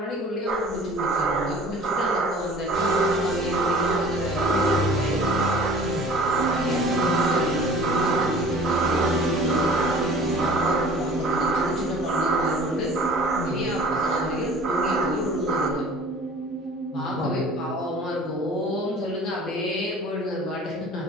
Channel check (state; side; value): normal; both; correlation 0.46